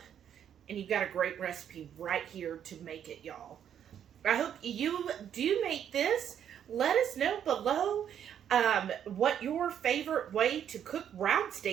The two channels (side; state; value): left; quieter; 9.3 dB